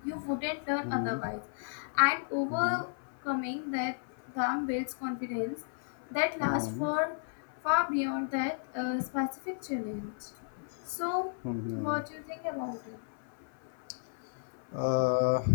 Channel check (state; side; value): silent; right; 55 dB below the other